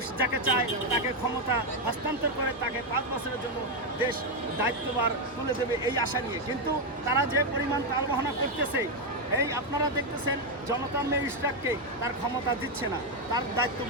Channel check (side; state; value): both; normal; correlation 0.04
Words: যাকে চায় তাকে ক্ষমতা হস্তান্তর করে তাকে 5 বছরের জন্য দেশ দায়িত্বভার তুলে দেবে এই আশা নিয়ে। কিন্তু তারা যে পরিমাণ তালবাহনা করতেছে, এই আপনারা দেখতেছেন জনতার মেজিস্ট্রেটকে তার ক্ষমতা দিচ্ছে না, তার দায়িত্ব